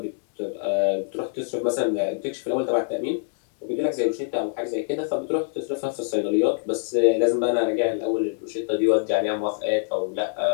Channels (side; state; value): right; silent; digital silence